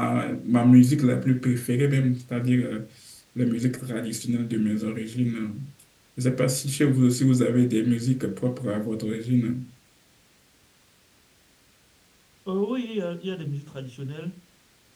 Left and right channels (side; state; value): both; identical; correlation 1.00